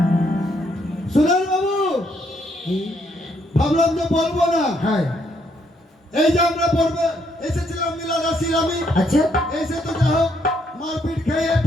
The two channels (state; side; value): normal; both; correlation 0.72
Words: সুরেন বাবু, কি? ভাবলাম যে বলবো না। হ্যাঁ এই যে আমরা পড়বে এসেছিলাম মিলা দাসির আমি, আচ্ছা এসে তো যা হোক মারপিট খেয়ে